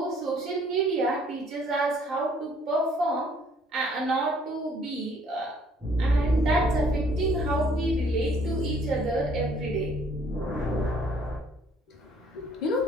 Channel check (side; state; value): both; normal; correlation 0.60